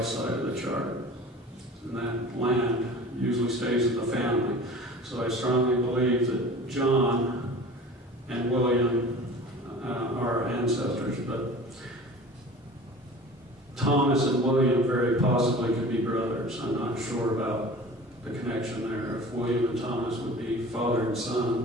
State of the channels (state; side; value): normal; both; correlation 0.40